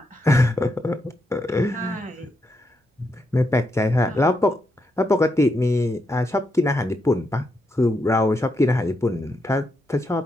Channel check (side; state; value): both; normal; correlation 0.81